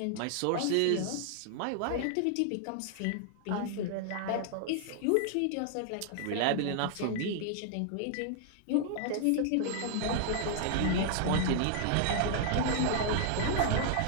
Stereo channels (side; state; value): both; different; correlation 0.00